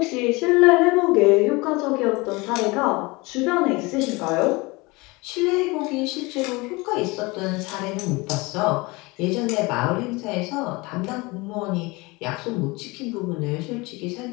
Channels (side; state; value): right; quieter; 24.5 dB